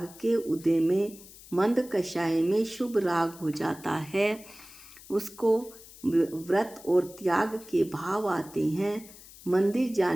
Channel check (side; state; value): left; noise; hiss, 19 dB below the sound